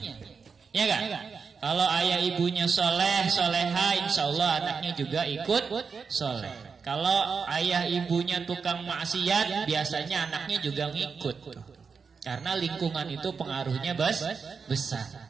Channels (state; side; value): quieter; left; 5.5 dB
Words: Ya kan? Kalau ayah ibunya soleh, soleha, insya Allah anaknya juga ikut soleh. Kalau ayah ibunya tukang maksiat, biasanya anaknya juga ngikut. Karena lingkungan itu pengaruhnya besar.